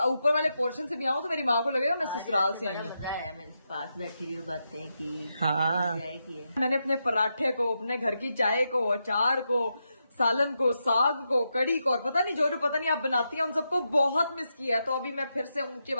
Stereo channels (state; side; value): inverted; both; correlation -0.85